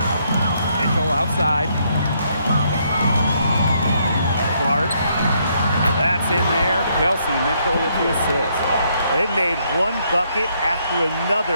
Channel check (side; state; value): both; inverted; correlation -0.72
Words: Mitchell outside. Clark. That's in there. Kelsey Mitchell with the assist. And it made one bucket after